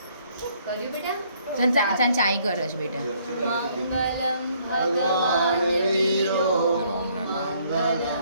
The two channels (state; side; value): inverted; both; correlation -0.65